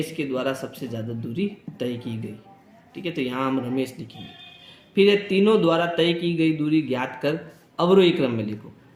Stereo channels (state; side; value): identical; both; correlation 1.00